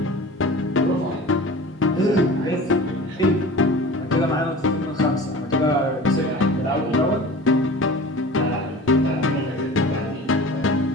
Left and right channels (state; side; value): normal; both; correlation 0.38